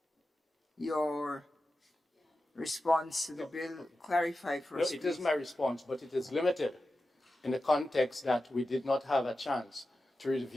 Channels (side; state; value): both; normal; correlation 0.92